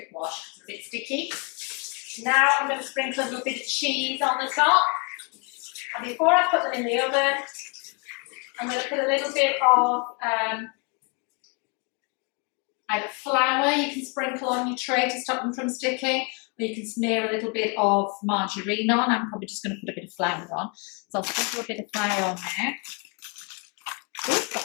wash because it's a bit sticky. Now I'm going to sprinkle a little bit of cheese on the top. And before I put them in the oven, I'm going to put a little bit of either flour you can sprinkle on your tray to stop them from sticking, or you can smear a little bit of margarine on. I'm probably just going to put a bit of flour on. So I'll sprinkle a bit of flour on there.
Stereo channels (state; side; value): quieter; right; 33.9 dB